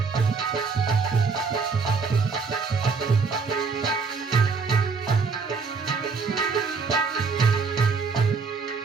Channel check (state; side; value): quieter; left; 4.8 dB